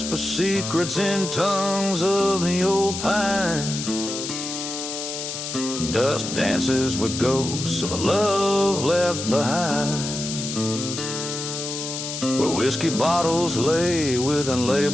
secrets in tongues of the old pine. Dust dances with ghosts of a love left behind, where whiskey bottles lay with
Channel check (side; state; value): left; noise; hiss, 6 dB below the sound